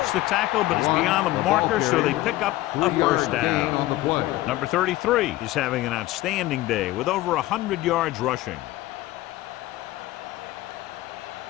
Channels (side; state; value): right; quieter; 17.0 dB